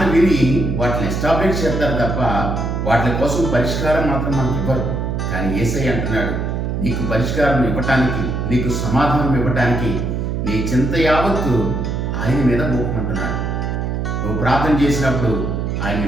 విని వాటిని ఎస్టాబ్లిష్ చేస్తారు తప్ప వాటి కోసం పరిష్కారం మాత్రం మనకు ఇవ్వరు. కానీ యేసయ్య అంటున్నాడు, నీకు పరిష్కారం ఇవ్వటానికి, నీకు సమాధానం ఇవ్వటానికి నీ చింత యావత్తు ఆయన మీద మోపమంటున్నాడు. నువ్వు ప్రార్థన చేసినప్పుడు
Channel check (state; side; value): noise; right; hum, 1 dB below the sound